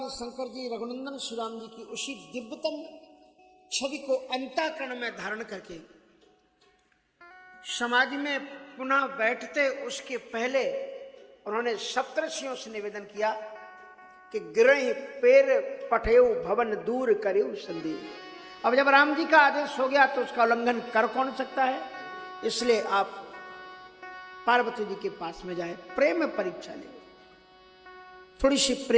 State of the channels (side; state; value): both; identical; correlation 1.00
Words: शंकर जी रघुनंदन श्री राम जी की उसी दिव्यतम छवि को अंतःकरण में धारण करके समाज में पुनः बैठते उसके पहले उन्होंने सप्तर्षियों से निवेदन किया कि गिरहि पेर पठेउ भवन दूर करेउ संदेह। अब जब राम जी का आदेश हो गया तो उसका उल्लंघन कर कौन सकता है, इसलिए आप पार्वती जी के पास में जाए, प्रेम में परीक्षा ले, थोड़ी सी